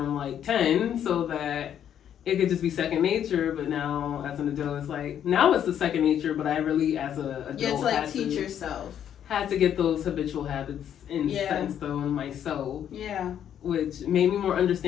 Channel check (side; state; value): right; quieter; 9.6 dB